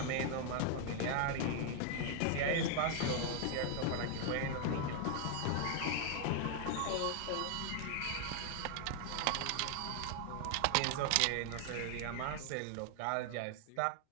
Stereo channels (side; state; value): both; different; correlation 0.00